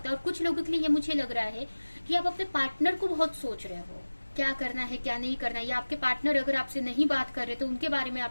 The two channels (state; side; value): inverted; both; correlation -1.00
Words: है, और कुछ लोगों के लिए ये मुझे लग रहा है कि आप अपने पार्टनर को बहुत सोच रहे हो, क्या करना है क्या नहीं करना है, या आपके पार्टनर अगर आपसे नहीं बात कर रहे तो उनके बारे में